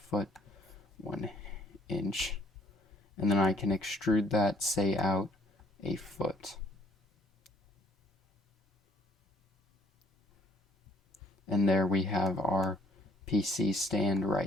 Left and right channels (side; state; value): both; normal; correlation 0.63